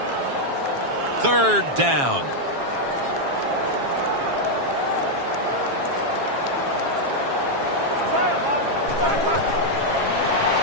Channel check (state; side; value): late; left; 7.4 ms